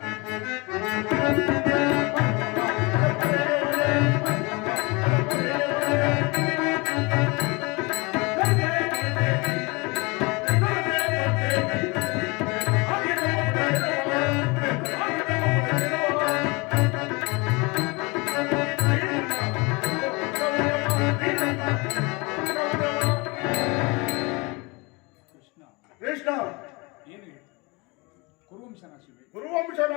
ಕೃಷ್ಣ, ಏನು ಹೇಳಿ? ಕುರುವಂಶ ನಾಶವೇ? ಗುರುವಂಶ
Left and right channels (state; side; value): quieter; right; 27.0 dB